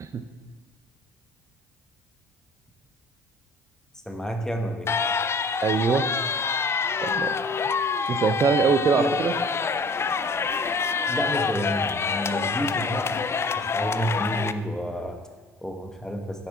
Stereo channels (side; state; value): both; normal; correlation 0.48